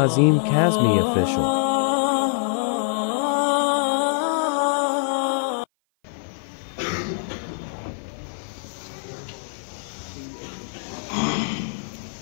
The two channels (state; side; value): silent; right; 56 dB below the other